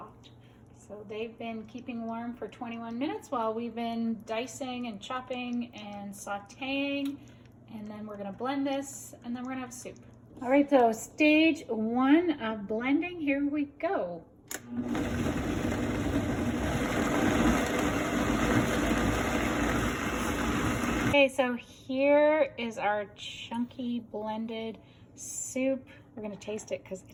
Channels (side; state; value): both; identical; correlation 1.00